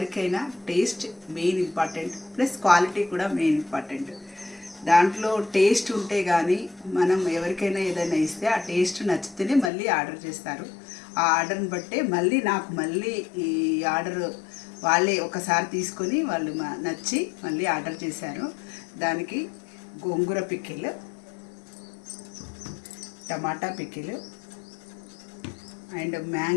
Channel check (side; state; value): right; drops out; at 9.7 s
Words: taste main important, plus quality కూడా మెయిన్ ఇంపార్టెంట్. దాంట్లో టేస్ట్ ఉంటే కానీ మనం ఎవరికైనా ఏదైనా ఇస్తే ఆ టేస్ట్ నచ్చితేనే మళ్ళీ ఆర్డర్ చేస్తారు. ఆ ఆర్డర్ని బట్టే మళ్ళీ ఈ ఆర్డర్ వాళ్ళే ఒకసారి తీసుకొని వాళ్ళు నచ్చి మళ్ళీ ఆర్డర్ చేశారు. దానికి గోంగూర pickle, tomato pickle and